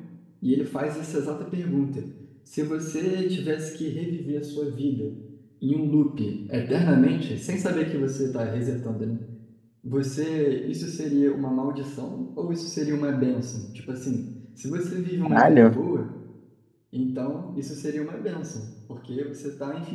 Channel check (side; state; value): both; identical; correlation 1.00